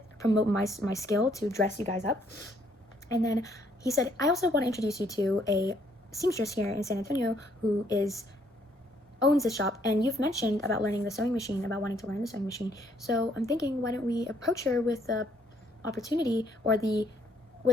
promote my skill to dress you guys up. And then he said, I also want to introduce you to a seamstress here in San Antonio who owns this shop, and you've mentioned about learning the sewing machine, about wanting to learn the sewing machine. So I'm thinking, why don't we approach her with the opportunity or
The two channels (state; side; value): normal; both; correlation 0.67